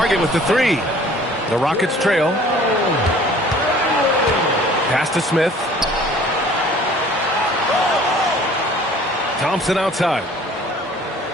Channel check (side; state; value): both; normal; correlation 0.51